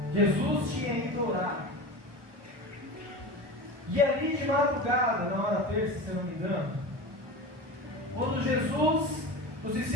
Jesus tinha ido orar. E ali de madrugada, na hora terça, se eu não me engano, quando Jesus, os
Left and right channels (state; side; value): late; left; 1.2 ms